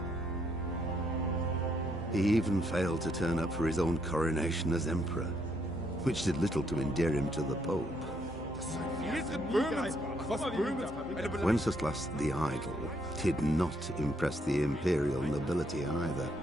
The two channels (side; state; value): both; normal; correlation 0.73